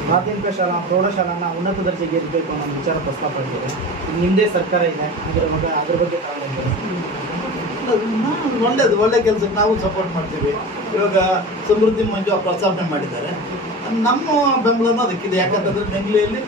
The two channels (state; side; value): normal; both; correlation 0.33